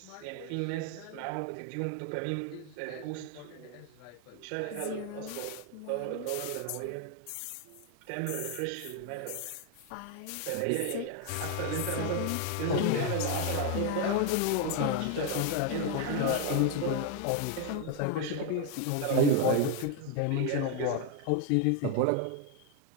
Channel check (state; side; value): different; both; correlation 0.01